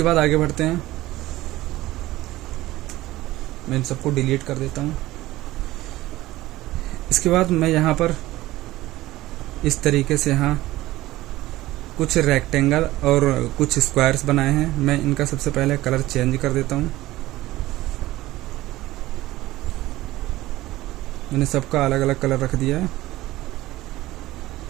बाद आगे बढ़ते हैं। मैं इन सबको डिलीट कर देता हूँ। इसके बाद मैं यहाँ पर इस तरीके से यहाँ कुछ रेक्टेंगल और कुछ स्क्वायर्स बनाए हैं। मैं इनका सबसे पहले कलर चेंज कर देता हूँ। मैंने सबका अलग अलग कलर रख दिया है।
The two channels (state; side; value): quieter; left; 17.0 dB